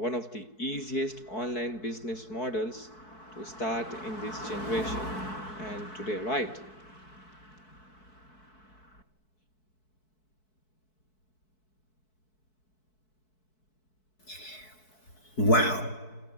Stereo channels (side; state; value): right; late; 4.6 ms